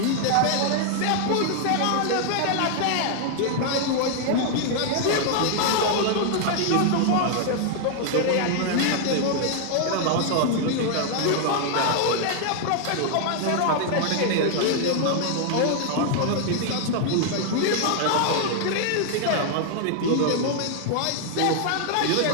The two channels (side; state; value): both; different; correlation 0.00